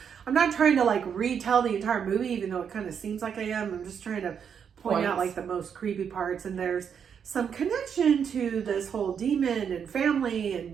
trying to like retell the entire movie, even though it kind of seems like I am. I'm just trying to point out like the most creepy parts, and there's some connection to this whole demon and family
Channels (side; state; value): left; quieter; 7.5 dB